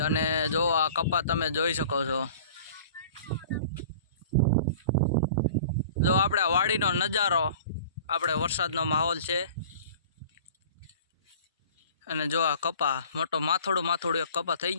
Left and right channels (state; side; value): inverted; both; correlation -0.45